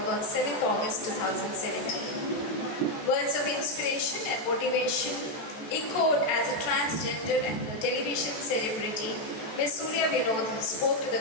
on 7th August 2017. Words of inspiration and motivation echoed as a transgender and a television celebrity. Ms. Surya Vinod spoke to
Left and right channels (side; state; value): right; late; 14 ms